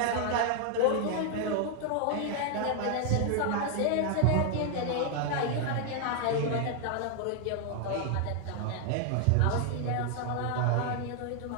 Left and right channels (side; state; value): both; different; correlation 0.00